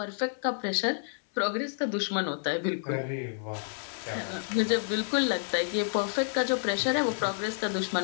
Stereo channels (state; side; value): silent; right; 58 dB below the other